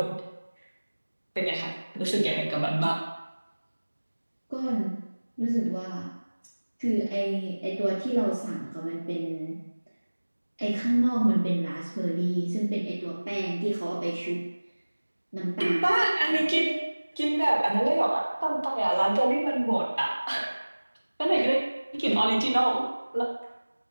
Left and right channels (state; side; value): inverted; both; correlation -1.00